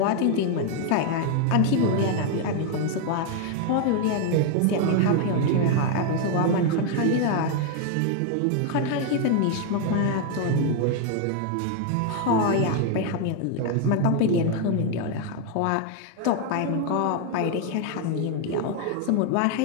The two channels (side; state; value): both; different; correlation 0.00